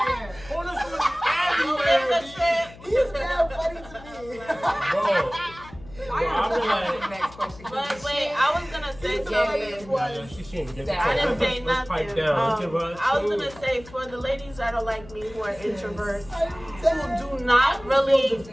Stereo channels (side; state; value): left; noise; hum, 19 dB below the sound